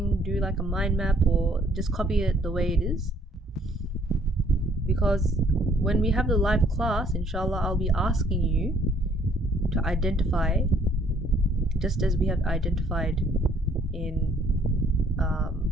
do like a mind map, or just copy it the way it is, because when we have the live class, inshallah, I'll be asking you to identify, just as we have identified in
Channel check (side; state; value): both; normal; correlation 0.62